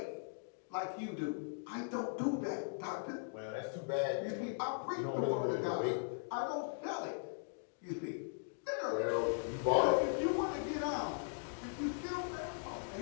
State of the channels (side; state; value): right; silent; digital silence